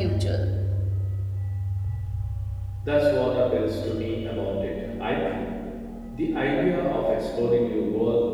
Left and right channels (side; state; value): both; identical; correlation 1.00